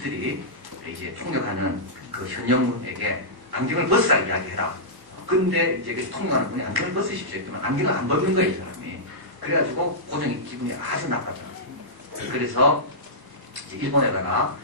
이제 통역하는 그 현영문에게 안경을 벗으라 이야기해라. 근데 이제 그 통역하는 분이 안경을 벗으십시오 했더니 안경을 안 벗는 거예요, 이 사람이. 그래가지고 고종이 기분이 아주 나빴더라고요. 그래서 이제 일본에다가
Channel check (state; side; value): late; left; 1.1 ms